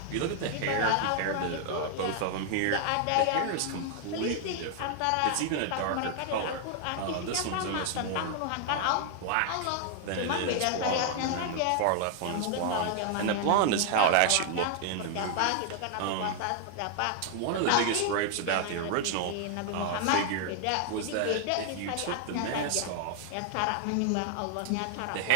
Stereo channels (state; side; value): different; both; correlation 0.00